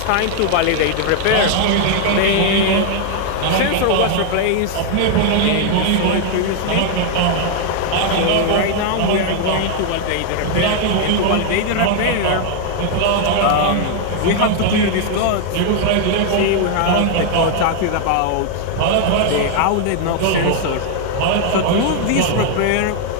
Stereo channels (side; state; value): both; different; correlation 0.00